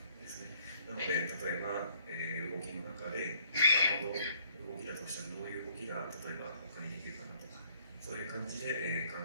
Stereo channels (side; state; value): both; inverted; correlation -0.63